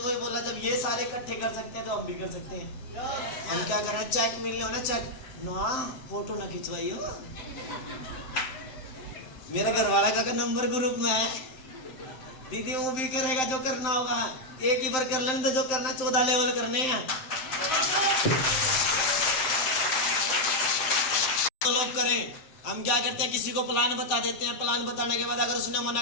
वही बोला, जब ये सारे इकट्ठे कर सकते हैं तो हम भी कर सकते हैं। हम क्या कर रहे हैं, चेक मिल लो ना, चेक ना, फोटो ना खिंचवाई हो। मेरा घरवाला का नंबर ग्रुप में है, दीदी वो भी करेगा जो करना होगा। एक ही बार कर लेने तो जो करना 14 लेवल करने हैं। तो लोग करें, हम क्या करते हैं, किसी को प्लान बता देते हैं। प्लान बताने के बाद अगर उसने मना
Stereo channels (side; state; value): right; late; 7.6 ms